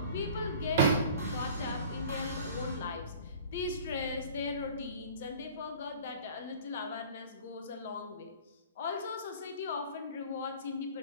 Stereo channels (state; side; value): inverted; both; correlation -0.44